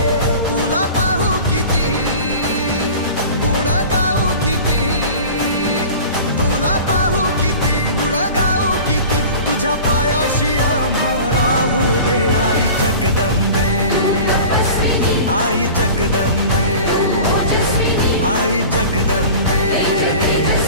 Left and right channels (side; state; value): both; inverted; correlation -0.38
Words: तुला पाहू किती गुण गाऊ किती तुला पाहू किती गुण गाऊ किती तुझ्या पायाशी आम्हा राहू दे आई जगदंबे आई जगदंबे आई जगदंबे